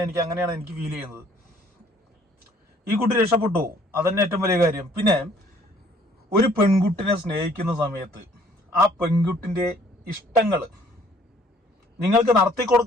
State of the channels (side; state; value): both; normal; correlation 0.60